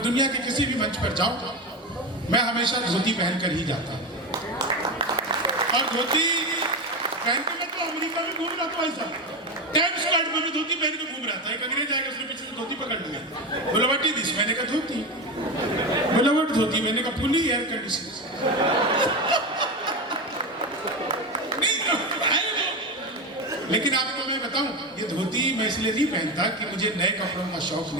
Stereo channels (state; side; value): normal; both; correlation 0.18